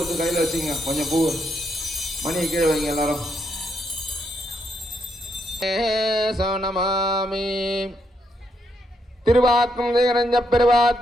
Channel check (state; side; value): normal; both; correlation 0.78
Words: கையில் வச்சுங்க. கொஞ்சம் பூ மணி கீழே வைங்க எல்லாரும். சோனமாமி. திருவாக்கும் திகரஞ்ச